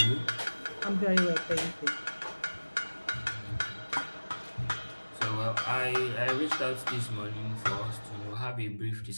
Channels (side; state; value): both; inverted; correlation -1.00